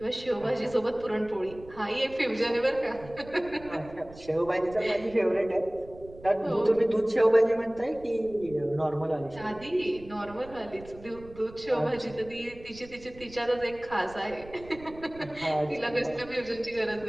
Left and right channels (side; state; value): right; noise; rumble, 19 dB below the sound